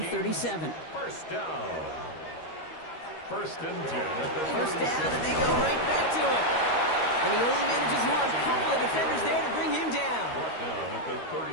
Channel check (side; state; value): right; late; 13 ms